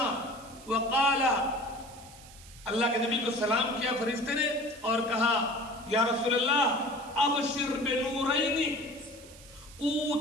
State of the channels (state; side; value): noise; right; hiss, 20 dB below the sound